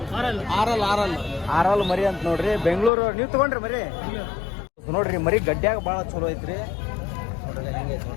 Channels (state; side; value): drops out; right; at 2.9 s